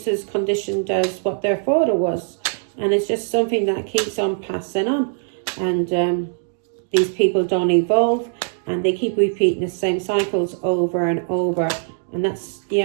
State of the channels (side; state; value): left; silent; digital silence